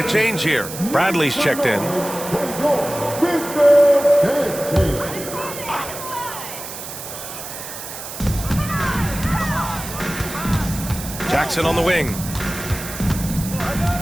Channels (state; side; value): noise; right; hiss, 10 dB below the sound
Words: change here. Bradley's checked in. Jackson on the wing.